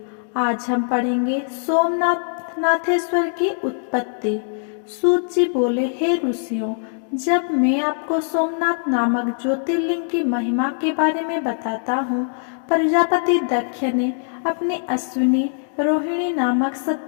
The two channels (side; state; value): right; silent; digital silence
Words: आज हम पढ़ेंगे सोमनाथ नाथेश्वर की उत्पत्ति। सूत जी बोले, हे ऋषियों, जब मैं आपको सोमनाथ नामक ज्योतिर्लिंग की महिमा के बारे में बताता हूँ, प्रजापति दक्ष ने अपनी अश्विनी रोहिणी नामक